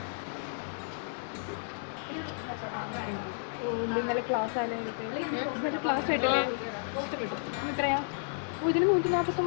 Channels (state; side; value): silent; right; digital silence